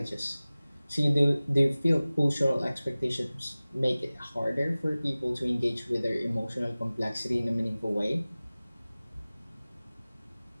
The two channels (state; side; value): inverted; both; correlation -0.98